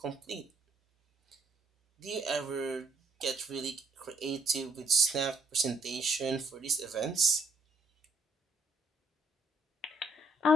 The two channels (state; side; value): normal; both; correlation 0.69